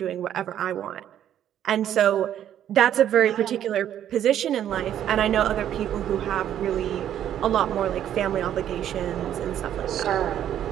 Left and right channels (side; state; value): left; quieter; 10.6 dB